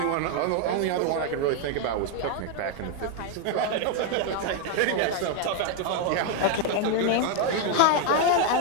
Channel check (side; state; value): both; different; correlation 0.01